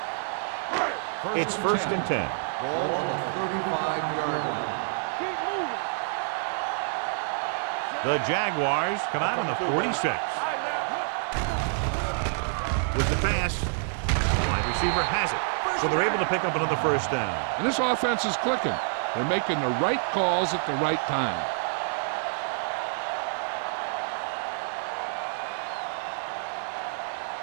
It's first and 10. Ball on the 35-yard line. Keep moving. The Jaguars come out on the 46. With the pass, the wide receiver has it. So they're able to pick up another first down. And this offense is clicking. They're making the right calls at the right time.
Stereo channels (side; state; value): left; silent; digital silence